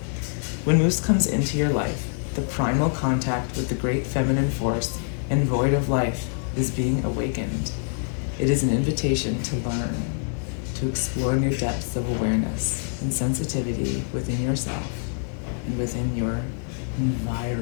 When moose comes into your life, the primal contact with the great feminine force and void of life is being awakened. It is an invitation to learn, to explore new depths of awareness and sensitivity within yourself and within your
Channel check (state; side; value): silent; right; 59 dB below the other